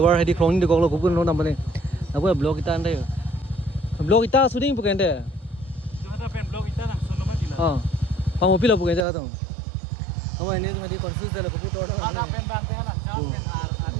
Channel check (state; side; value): drops out; left; at 9.1 s